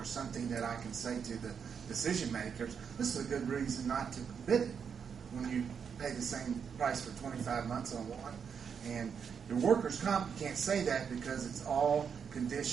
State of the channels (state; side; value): quieter; left; 6.8 dB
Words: something that I can say to the decision makers, this is a good reason not to bid it when you pay the same price for 25 months on one. And your workers' comp, you can't say that because it's all